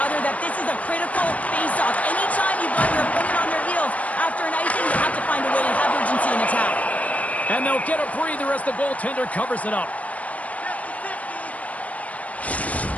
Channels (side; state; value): right; late; 0.068 ms